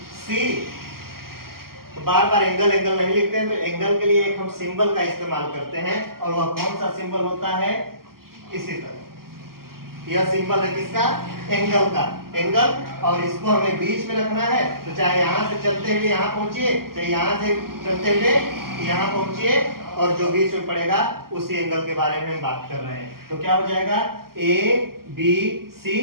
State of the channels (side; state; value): left; late; 0.92 ms